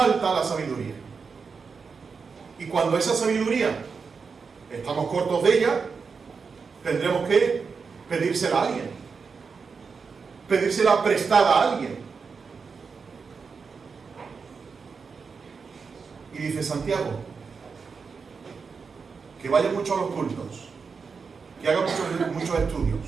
la sabiduría. Y cuando esa sabiduría estamos cortos de ella, tendremos que pedírsela a alguien, pedírsela prestada a alguien. Y dice Santiago, que vaya mucho a los cultos, que haga muchos estudios,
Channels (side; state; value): left; quieter; 5.3 dB